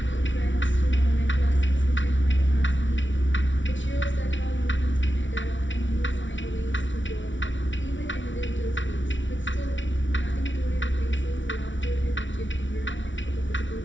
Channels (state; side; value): late; right; 0.55 ms